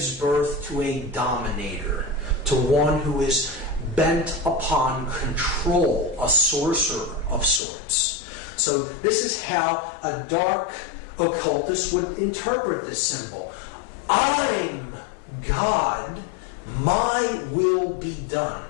birth to a dominator, to one who is bent upon control, a sorcerer of sorts. So this is how a dark occultist would interpret this symbol. I'm God, my will be done.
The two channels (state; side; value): drops out; right; at 7.6 s